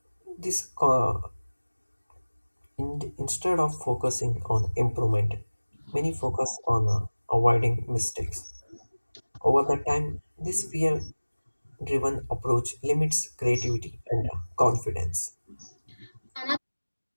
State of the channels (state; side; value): inverted; both; correlation -1.00